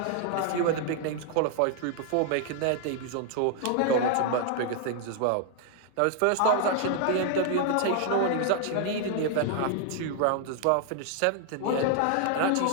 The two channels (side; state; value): both; different; correlation 0.00